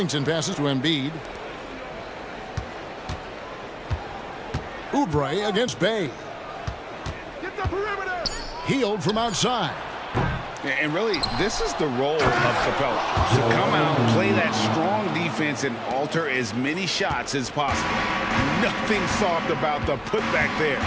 passes to Embiid. Oubre against Bay. Get the perimeter. Healed from outside. And really, this is the role of Capella. To come out, play that strong defense, and alter as many shots as possible. Nothing soft about the putback there.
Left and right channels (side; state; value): both; identical; correlation 1.00